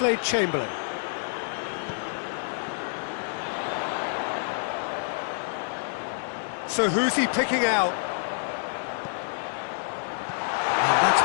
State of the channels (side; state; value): right; silent; digital silence